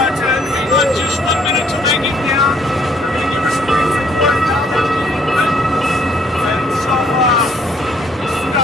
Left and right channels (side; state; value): both; normal; correlation 0.64